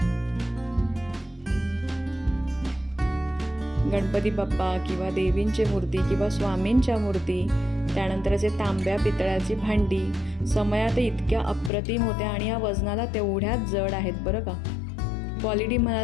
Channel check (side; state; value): right; drops out; at 11.7 s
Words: गणपती बाप्पा किंवा देवींची मूर्ती किंवा स्वामींच्या मूर्ती, त्यानंतर असे तांब्या पितळाची भांडी समयात इतक्या अप्रतिम होत्या आणि या वजनाला तेवढ्याच जड आहेत बरं का. क्वालिटी